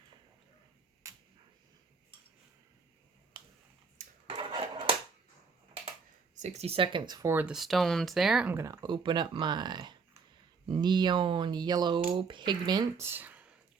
"60 seconds for the stones there. I'm going to open up my neon yellow pigment.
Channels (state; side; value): quieter; left; 5.2 dB